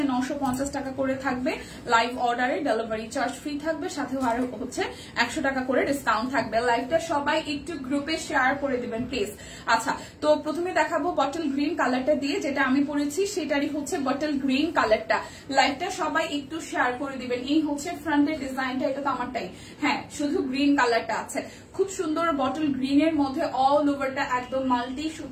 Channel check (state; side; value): identical; both; correlation 1.00